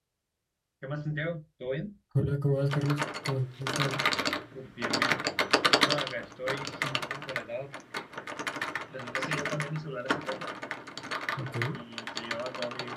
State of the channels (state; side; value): identical; both; correlation 1.00